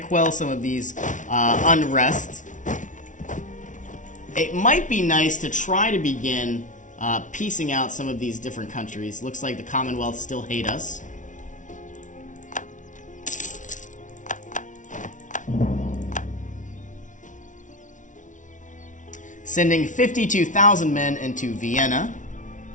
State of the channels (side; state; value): right; late; 0.37 ms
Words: some of these unrest. It might be nice to try to begin piecing out some of these different countries. Looks like the Commonwealth still hate us. Sending 52,000 men into Vienna.